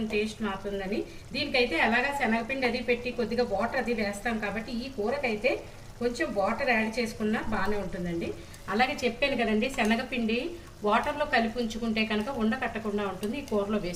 టేస్ట్ మారుతుందని. దీనికైతే అలాగా శనగపిండి అది పెట్టి కొద్దిగా వాటర్ అది వేస్తాం కాబట్టి ఈ కూరకైతే కొంచెం వాటర్ యాడ్ చేసుకున్నా బాగానే ఉంటుందండి. అలాగే చెప్పాను కదండి, శనగపిండి వాటర్లో కలిపి ఉంచుకుంటే కనుక ఉండకట్టకుండా ఉంటుంది ఈ కూరలో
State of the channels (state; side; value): identical; both; correlation 1.00